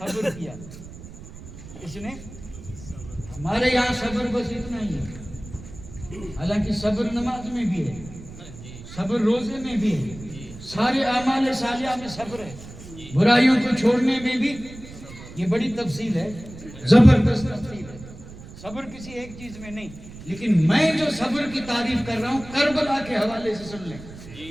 کیا. اس نے ہمارے یہاں صبر بس اتنا ہی ہے. حالانکہ صبر نماز میں بھی ہے, صبر روزے میں بھی ہے, سارے اعمال صالحہ میں صبر ہے, برائیوں کو چھوڑنے میں بھی. یہ بڑی تفصیل ہے, زبردست تفصیل ہے. صبر کسی ایک چیز میں نہیں, لیکن میں جو صبر کی تعریف کر رہا ہوں کربلا کے حوالے سے سن لیں.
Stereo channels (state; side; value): noise; right; rumble, 15 dB below the sound